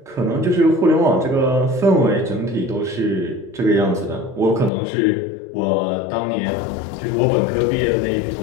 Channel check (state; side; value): drops out; right; at 4.7 s